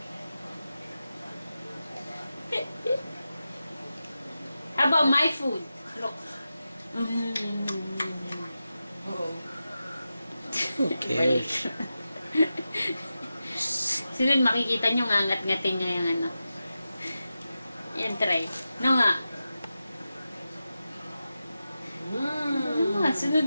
How about my food? Look. Who cares? Sunod makikita nyo ngangat-ngatin nyo yung ano. Yan, try. No nga.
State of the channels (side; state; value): both; inverted; correlation -0.92